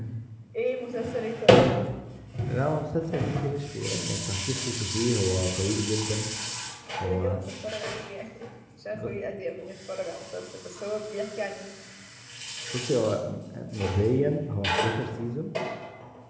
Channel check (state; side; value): identical; both; correlation 1.00